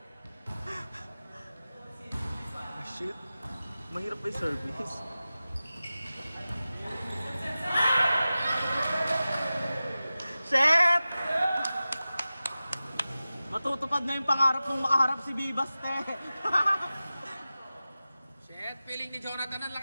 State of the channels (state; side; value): inverted; both; correlation -0.95